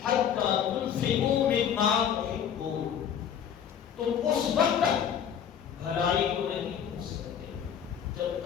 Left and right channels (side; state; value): right; quieter; 8.6 dB